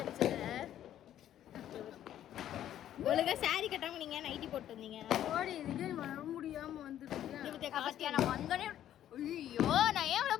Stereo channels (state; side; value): quieter; right; 11.4 dB